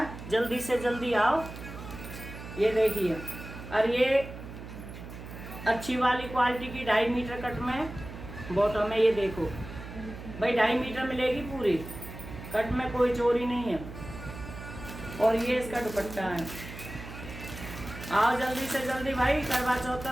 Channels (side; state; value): right; noise; hum, 12 dB below the sound